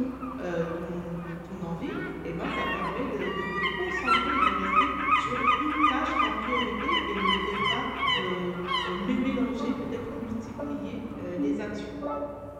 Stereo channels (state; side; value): identical; both; correlation 1.00